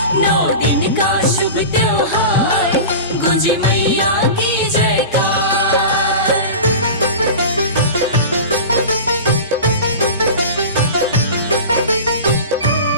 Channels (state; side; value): inverted; both; correlation -0.31